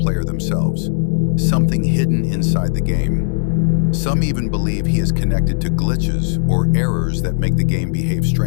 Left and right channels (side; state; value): right; silent; digital silence